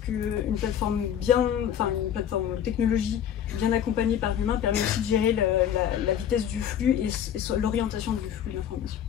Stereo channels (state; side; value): quieter; right; 9.5 dB